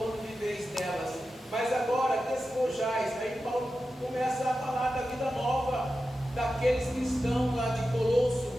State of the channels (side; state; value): both; normal; correlation 0.92